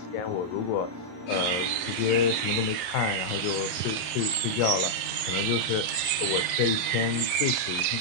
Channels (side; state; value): right; late; 34 ms